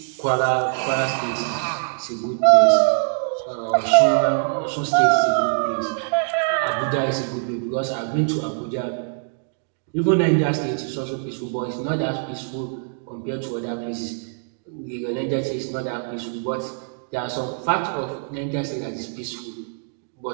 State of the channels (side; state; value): left; silent; digital silence